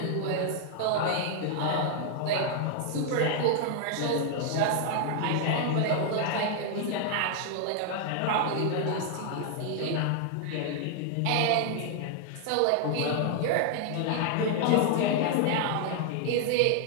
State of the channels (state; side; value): different; both; correlation 0.00